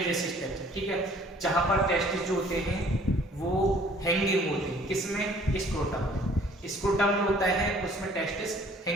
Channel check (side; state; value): both; normal; correlation 0.56